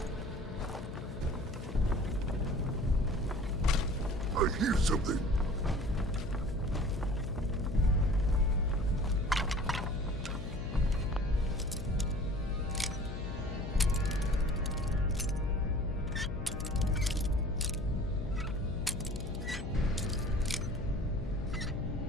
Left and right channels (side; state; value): left; noise; hum, 10 dB below the sound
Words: I hear something.